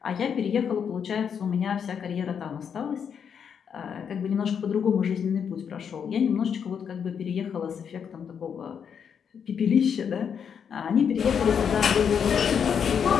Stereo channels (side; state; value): right; quieter; 7.4 dB